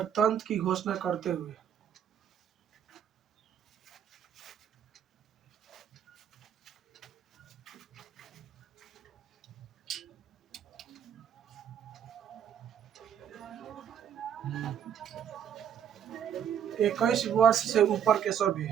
की घोषणा करते हुए हम्म। 21 वर्ष से ऊपर के सभी,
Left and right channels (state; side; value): quieter; left; 8.8 dB